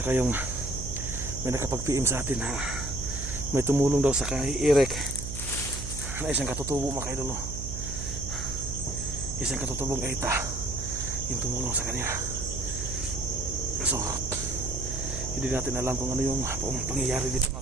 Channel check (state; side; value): noise; right; hum, 7 dB below the sound